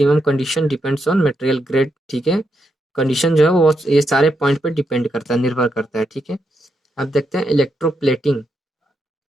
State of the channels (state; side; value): normal; both; correlation 0.82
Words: condition depends on material grade. ठीक है, कंडीशन जो है वो ये सारे पॉइंट पे डिपेंड करता है, निर्भर करता है। ठीक है, अब देखते हैं इलेक्ट्रोप्लेटिंग।